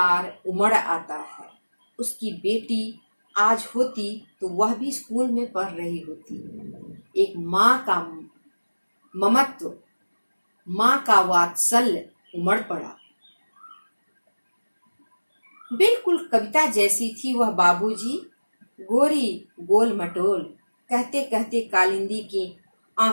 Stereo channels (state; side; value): inverted; both; correlation -1.00